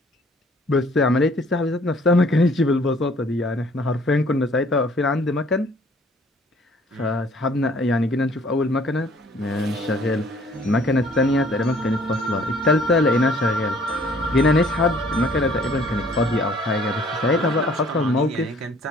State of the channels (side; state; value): both; normal; correlation 0.58